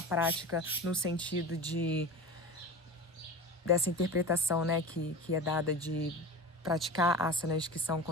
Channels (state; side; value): normal; both; correlation 0.32